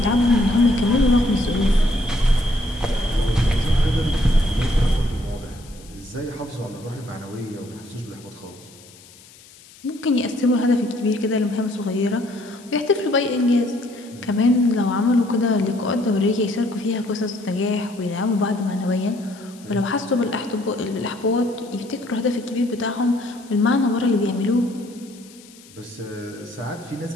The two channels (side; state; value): left; noise; hiss, 23 dB below the sound